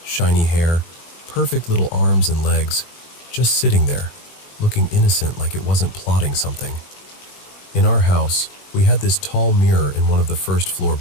shiny hair, perfect little arms and legs, just sitting there, looking innocent like it wasn't plotting something. In our house, we had this tall mirror in one of the first-floor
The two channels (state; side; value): late; right; 21 ms